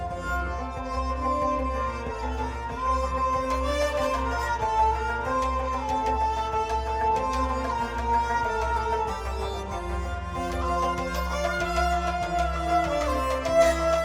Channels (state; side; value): identical; both; correlation 1.00